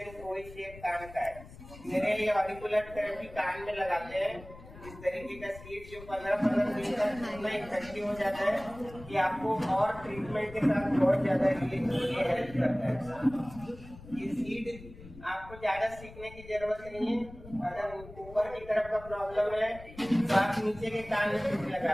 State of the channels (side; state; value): left; noise; rumble, 17 dB below the sound